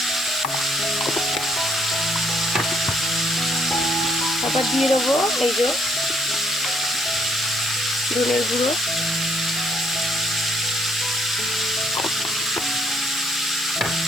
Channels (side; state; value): left; noise; hiss, 9 dB below the sound